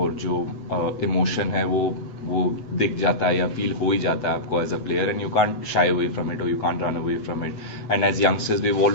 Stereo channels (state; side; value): late; right; 8.0 ms